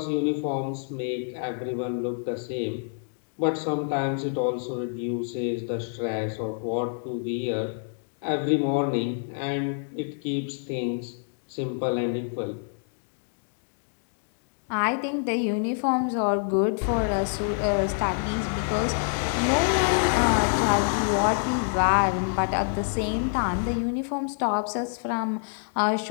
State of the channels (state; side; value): silent; right; digital silence